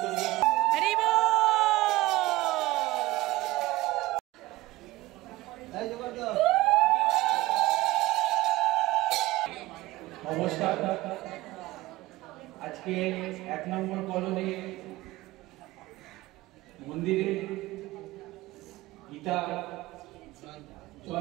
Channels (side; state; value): left; quieter; 18.6 dB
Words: দিয়ে হরি বল। নমস্কার। আজকে 1 নম্বর কলোনি মন্দিরে